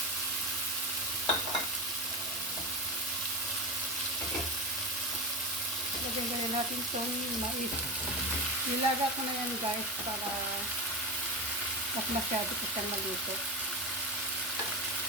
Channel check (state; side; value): normal; both; correlation 0.20